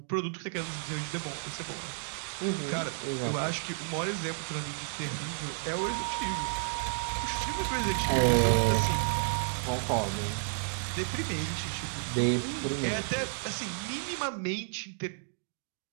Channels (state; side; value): silent; left; digital silence